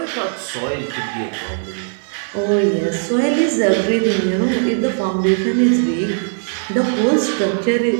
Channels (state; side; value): silent; left; digital silence